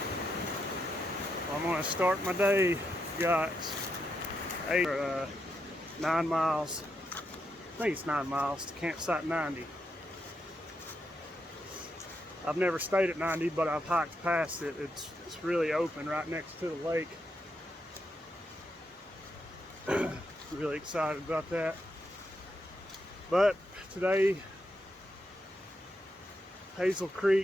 I'm going to start my day. Got 9 miles. I think it's 9 miles to campsite 90. I've never stayed at 90, but I've hiked past it. It's really open right next to the lake. Really excited about that. But today, Hazel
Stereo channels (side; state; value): both; normal; correlation 0.82